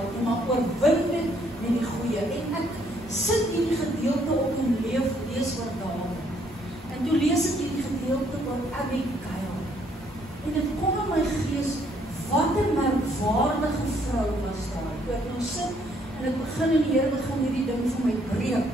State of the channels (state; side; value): normal; both; correlation 0.68